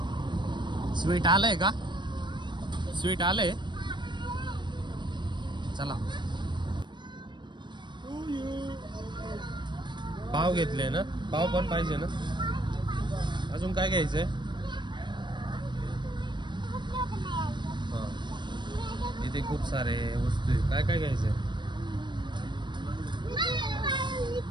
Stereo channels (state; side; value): late; left; 0.22 ms